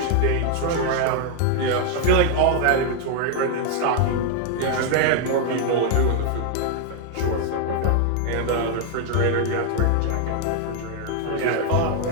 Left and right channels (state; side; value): different; both; correlation 0.00